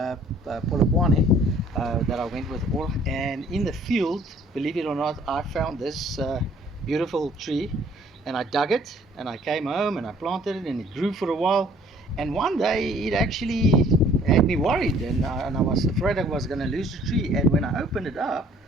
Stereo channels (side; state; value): both; normal; correlation 0.57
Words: Polokwane that I went with all. And in the field, believe it or not, I found this beautiful tree, and I dug it, and I came home and I planted it, and it grew for a while. And one day it actually had me worried, and I was afraid I was going to lose the tree. And when I opened it up,